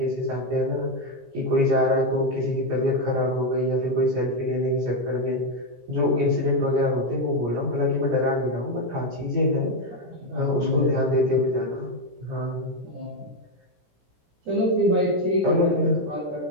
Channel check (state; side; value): late; left; 17 ms